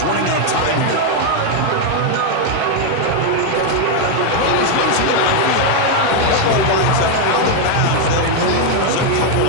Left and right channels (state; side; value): different; both; correlation 0.01